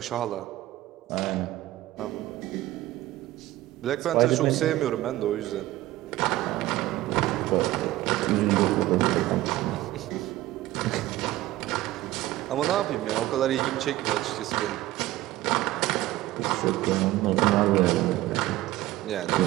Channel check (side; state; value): left; quieter; 16.3 dB